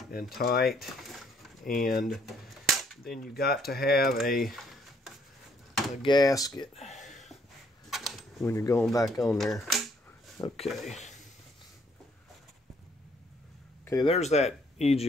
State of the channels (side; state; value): both; normal; correlation 0.66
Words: and tight, and then you got to have a gasket when you're going back on there. Okay, there's that